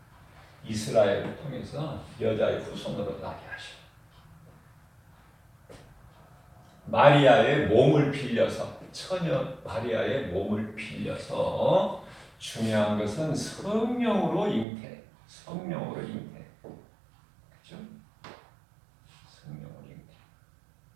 이스라엘을 통해서 여자의 후손으로 나게 하셔. 마리아의 몸을 빌려서, 처녀 마리아의 몸을 빌려서, 중요한 것은 성령으로 잉태. 그죠? 성령으로 잉태.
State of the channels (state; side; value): drops out; left; at 14.7 s